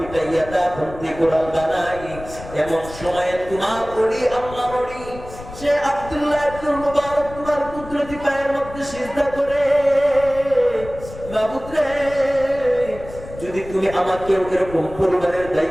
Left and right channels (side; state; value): left; noise; rumble, 15 dB below the sound